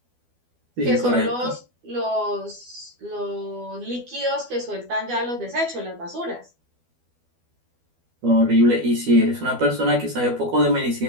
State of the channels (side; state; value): left; late; 12 ms